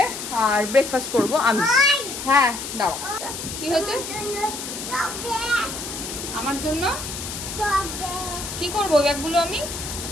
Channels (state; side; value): noise; left; hiss, 7 dB below the sound